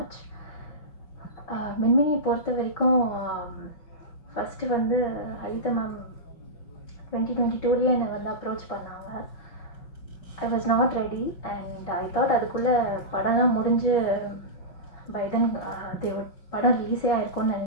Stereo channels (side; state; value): right; late; 5.4 ms